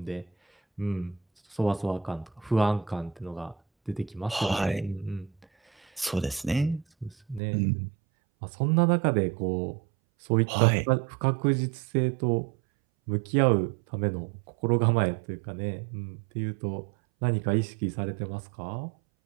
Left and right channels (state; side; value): drops out; left; at 7.4 s